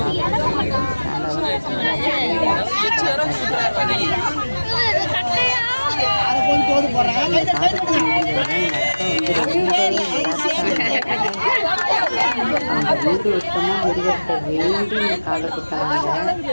வீடு வருஷமா முருகத்தை வேண்டி காதை குத்தாங்க.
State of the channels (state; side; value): inverted; both; correlation -1.00